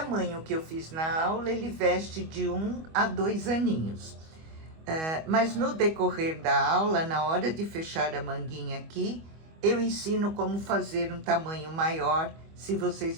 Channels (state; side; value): late; left; 25 ms